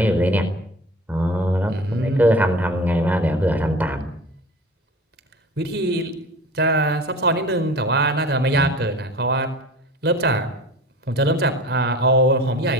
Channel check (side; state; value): both; normal; correlation 0.38